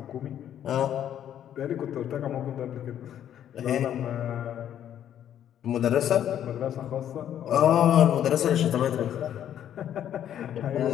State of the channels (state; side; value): quieter; right; 10.4 dB